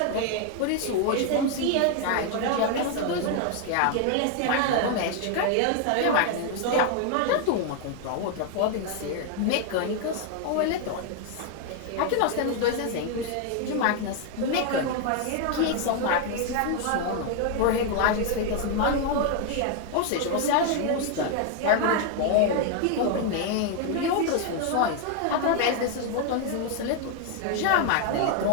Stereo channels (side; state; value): both; different; correlation 0.00